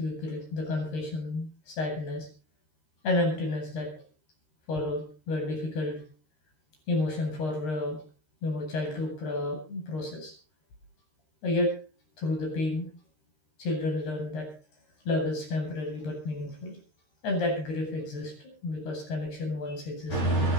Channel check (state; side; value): late; right; 13 ms